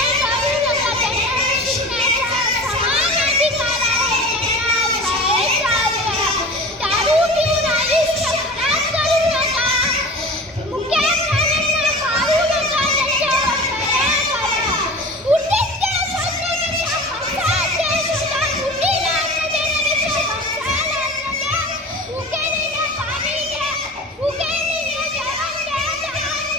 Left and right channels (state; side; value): normal; both; correlation 0.36